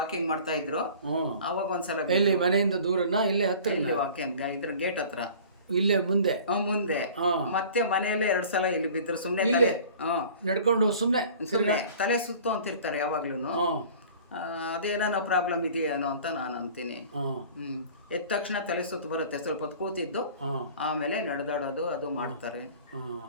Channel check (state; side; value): inverted; both; correlation -0.45